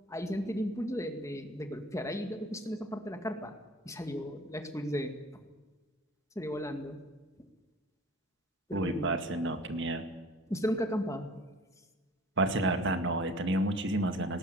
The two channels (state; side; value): normal; both; correlation 0.46